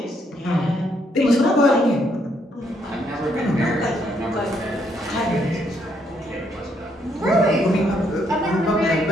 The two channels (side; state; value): both; normal; correlation 0.73